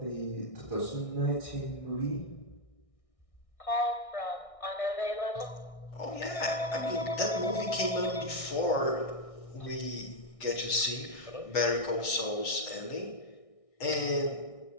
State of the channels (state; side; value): late; right; 1.6 ms